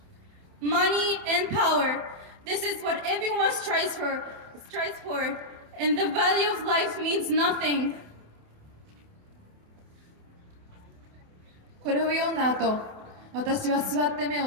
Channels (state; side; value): late; left; 28 ms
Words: Money and power, this is what everyone strives for, and the value of life means nothing. これを読んだ後、私は座って目を